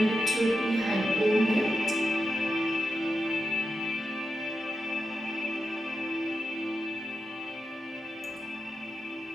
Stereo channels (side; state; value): both; normal; correlation 0.88